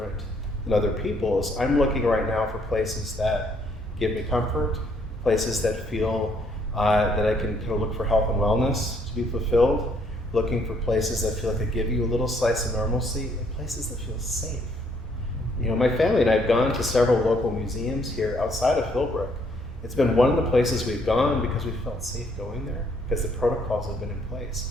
than other people's. I'm looking right now for places that give me comfort, places that feel that I can kind of look for health and wellness to be fulfilled, looking for places that feel like they give you a little slice of normalcy, and places that feel safe. You know, my family and I have gone to several local museums here outside of Philbrook. It's been one of the places we've gone because we felt safe going there, because the protocols have been in place.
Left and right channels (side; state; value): both; normal; correlation 0.67